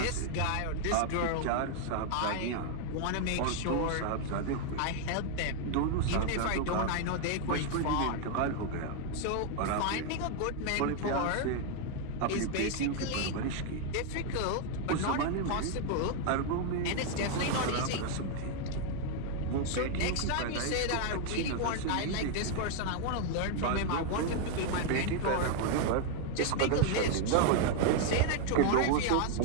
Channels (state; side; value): different; both; correlation 0.00